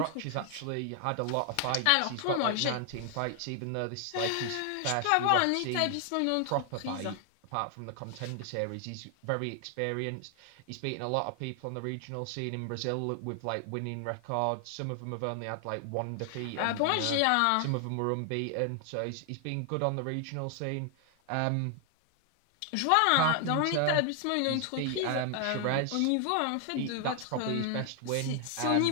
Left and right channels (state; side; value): different; both; correlation 0.00